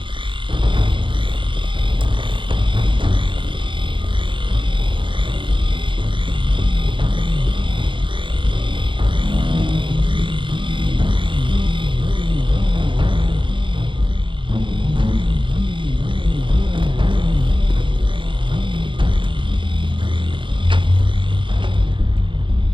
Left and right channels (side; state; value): left; late; 0.24 ms